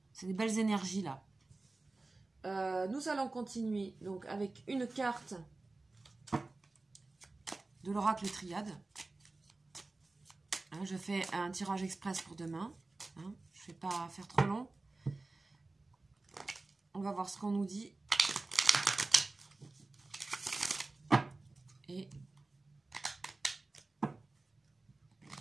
C'est des belles énergies, là. Nous allons continuer, donc, avec une carte de l'oracle Triade. Hein, je fais un tirage express pour demain. Hein, je ne vais pas faire trop long. On va voir ce qu'on nous dit. Et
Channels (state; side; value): quieter; left; 3.3 dB